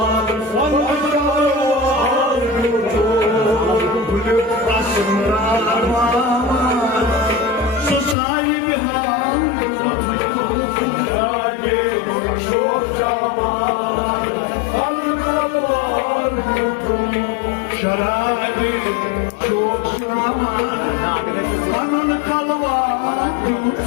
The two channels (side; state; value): right; drops out; at 8.2 s